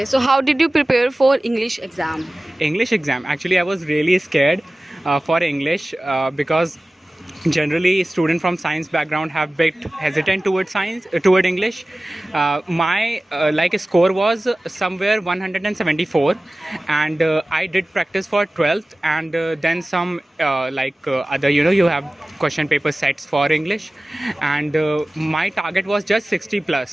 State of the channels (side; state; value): both; normal; correlation 0.97